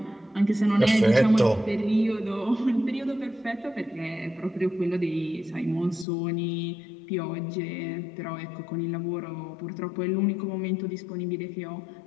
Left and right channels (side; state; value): right; drops out; at 6.1 s